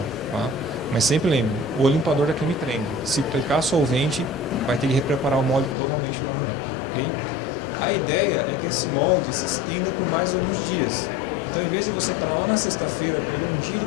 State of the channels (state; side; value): drops out; right; at 5.8 s